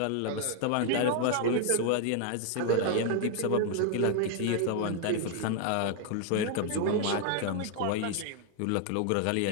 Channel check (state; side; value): different; both; correlation 0.00